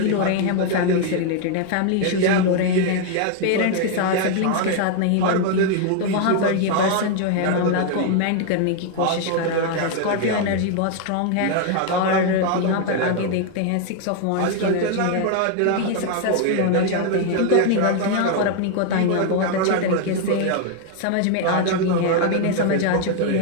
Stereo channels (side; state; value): both; different; correlation 0.00